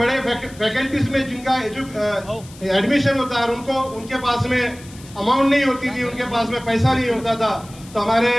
फैकल्टीज में जिनका एडमिशन होता है, उनको उनके पास में अमाउंट नहीं होती थी, उनके पास में पैसा नहीं होता था, तो हमारे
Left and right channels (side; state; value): left; noise; hiss, 21 dB below the sound